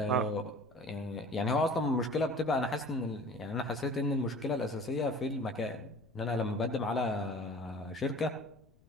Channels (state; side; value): noise; left; rumble, 29 dB below the sound